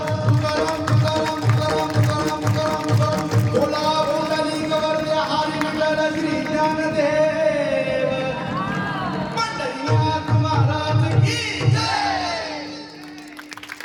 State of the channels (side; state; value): both; identical; correlation 1.00